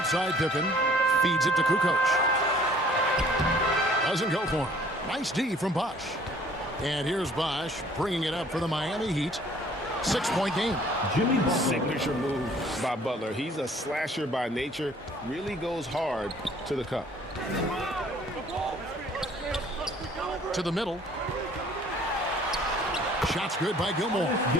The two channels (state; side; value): normal; both; correlation 0.55